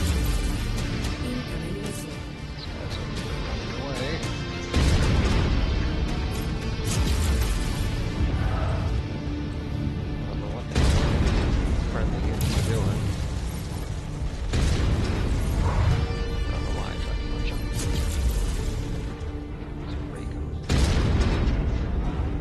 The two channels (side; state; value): both; identical; correlation 1.00